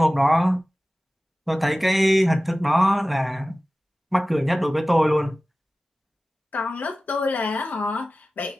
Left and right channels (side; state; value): both; normal; correlation 0.96